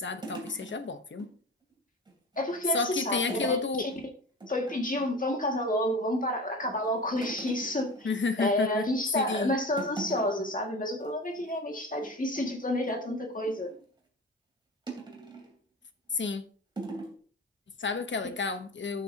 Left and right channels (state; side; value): normal; both; correlation 0.32